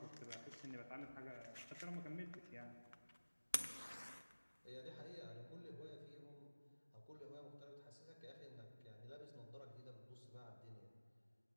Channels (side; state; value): both; inverted; correlation -1.00